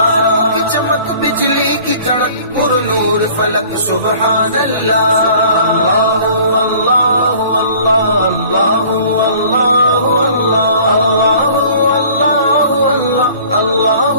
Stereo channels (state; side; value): inverted; both; correlation -0.50